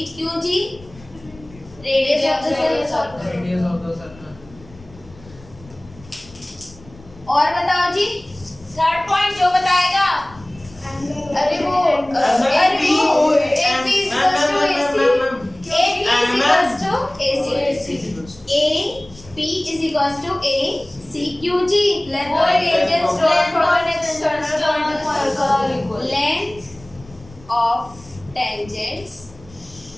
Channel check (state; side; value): noise; left; rumble, 22 dB below the sound